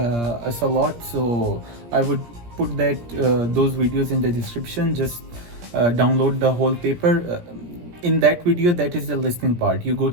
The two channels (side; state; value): left; late; 17 ms